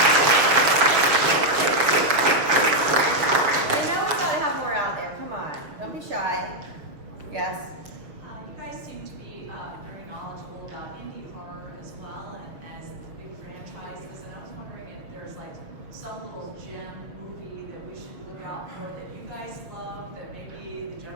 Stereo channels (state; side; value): late; left; 6.5 ms